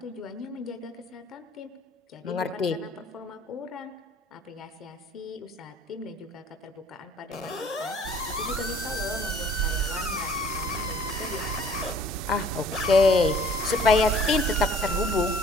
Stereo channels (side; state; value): both; normal; correlation 0.54